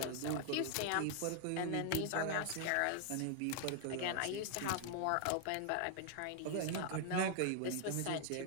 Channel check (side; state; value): both; different; correlation 0.00